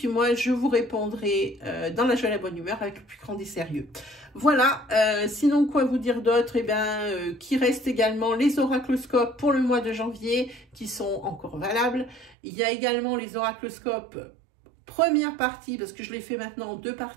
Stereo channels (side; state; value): left; drops out; at 12.4 s